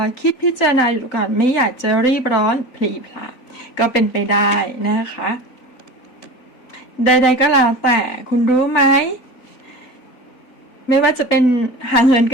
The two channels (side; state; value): right; late; 4.0 ms